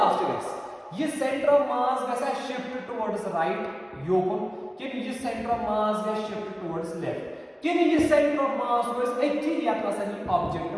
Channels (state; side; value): identical; both; correlation 1.00